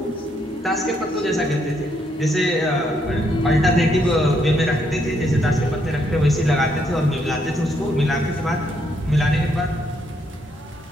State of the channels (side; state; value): both; normal; correlation 0.74